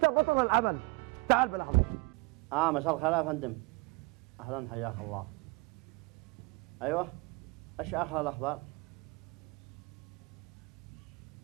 بطل العمل. تعال بالأخبار. مساء الخير يا فندم. أهلا حياك الله. أيوه، إيش آخر الأخبار؟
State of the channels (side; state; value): left; quieter; 26.6 dB